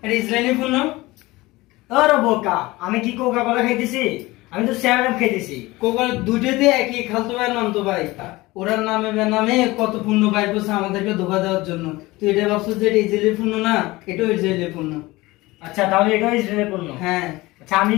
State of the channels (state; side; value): quieter; right; 20.4 dB